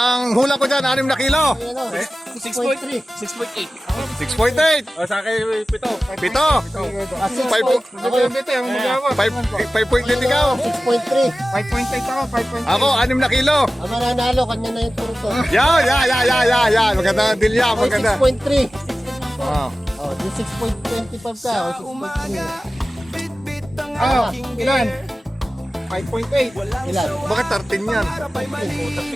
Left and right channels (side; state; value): both; normal; correlation 0.96